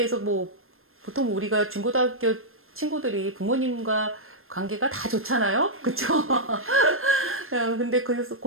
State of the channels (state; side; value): late; left; 0.61 ms